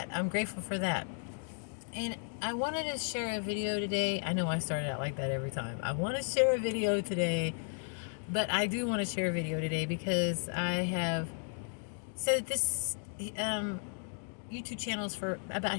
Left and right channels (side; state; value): right; silent; 55 dB below the other